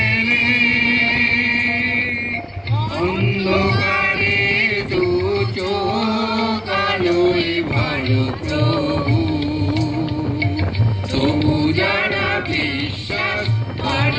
অন্ধকারে দু চোখ আলোয় ভরো প্রভু। তবু যারা বিশ্বাস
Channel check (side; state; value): both; identical; correlation 1.00